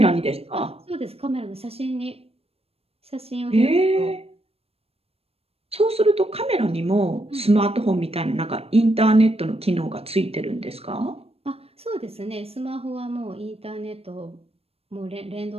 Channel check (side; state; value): left; late; 0.28 ms